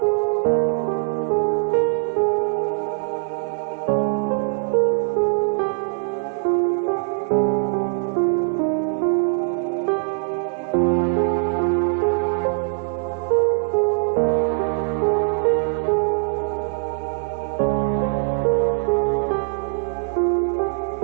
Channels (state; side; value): silent; left; 62 dB below the other